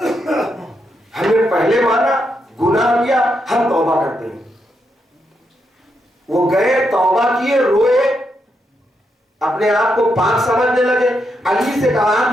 ہم نے پہلے مانا، گناہ کیا، ہم توبہ کرتے ہیں۔ وہ گئے توبہ کیے، روئے، اپنے آپ کو پاک سمجھنے لگے۔ علی سے کہا آپ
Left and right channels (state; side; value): normal; both; correlation 0.81